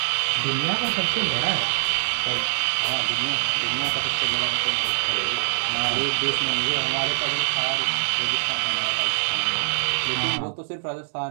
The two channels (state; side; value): silent; left; 63 dB below the other